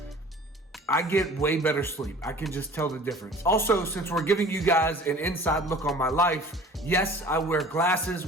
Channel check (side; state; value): both; normal; correlation 0.45